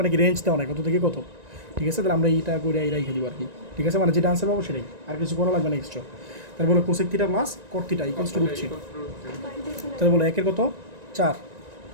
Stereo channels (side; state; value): left; late; 1.9 ms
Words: কি রেঞ্জ দেওয়া নাই কত থেকে কত। ঠিক আছে, তাহলে আমরা এইটা করে এই রেখে দিব আর কি। ঠিক আছে, মানে যেটা আনসার পাবো সেটাই, আর কিছু করা লাগবে না এক্সট্রা। তাহলে বলো cosec theta plus coat theta equals to √3। তাহলে বলো 1 এর কত 4,